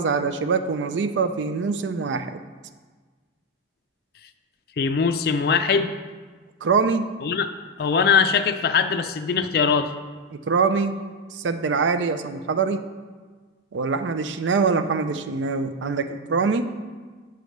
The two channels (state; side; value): normal; both; correlation 0.05